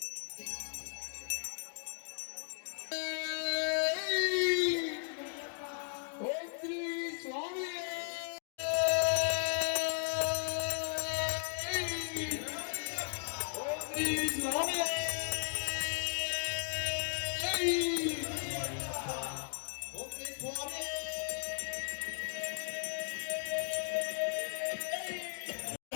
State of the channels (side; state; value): right; silent; digital silence